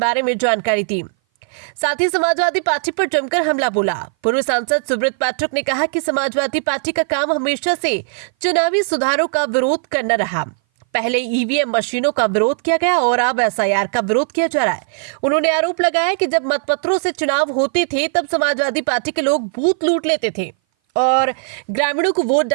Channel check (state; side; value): silent; left; 59 dB below the other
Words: में जानकारी दी। साथ ही समाजवादी पार्टी पर जमकर हमला बोला। पूर्व सांसद सुब्रत पाठक ने कहा कि समाजवादी पार्टी का काम हमेशा से चुनावी सुधारों का विरोध करना रहा। पहले ईवीएम मशीनों का विरोध किया गया और अब एसआईआर का विरोध किया जा रहा है। उन्होंने आरोप लगाया कि जब मतपत्रों से चुनाव होते थे तब समाजवादी पार्टी के लोग बूथ लूट लेते थे और ग्रामीणों को वोट